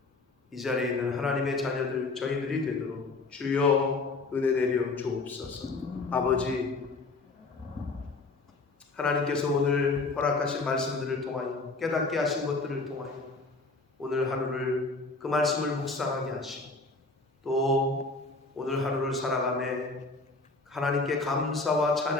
이 자리에 있는 하나님의 자녀들 저희들이 되도록 주여 은혜 내려 주옵소서. 아버지, 하나님께서 오늘 허락하신 말씀들을 통하여 깨닫게 하신 것들을 통하여 오늘 하루를 그 말씀을 묵상하게 하시고 또 오늘 하루를 살아가며 하나님께 감사와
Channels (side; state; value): right; quieter; 3.6 dB